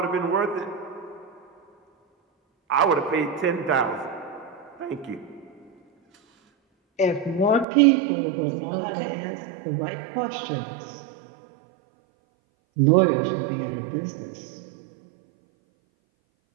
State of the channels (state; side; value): drops out; left; at 7.7 s